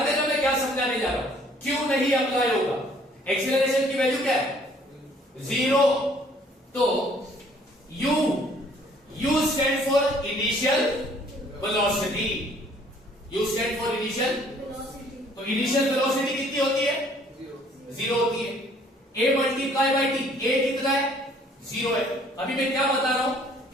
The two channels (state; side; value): normal; both; correlation 0.59